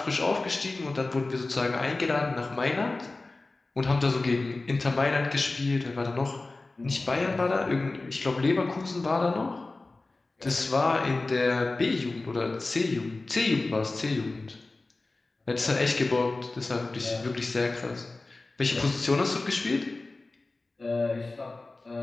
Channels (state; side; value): quieter; right; 3.3 dB